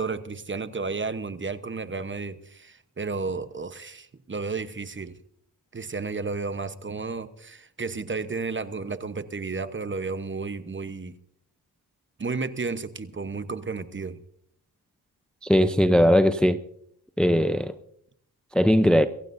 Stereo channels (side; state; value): both; normal; correlation 0.78